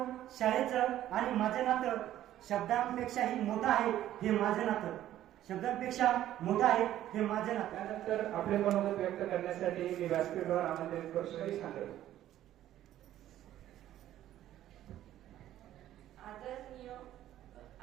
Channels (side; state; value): left; quieter; 12.7 dB